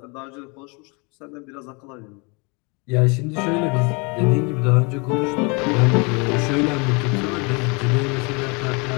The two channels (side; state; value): right; quieter; 30.8 dB